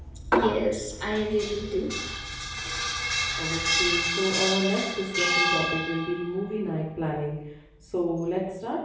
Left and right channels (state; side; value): identical; both; correlation 1.00